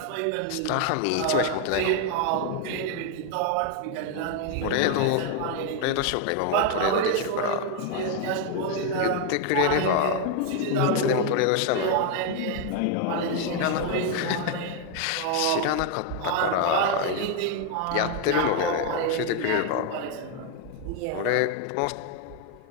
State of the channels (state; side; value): different; both; correlation 0.01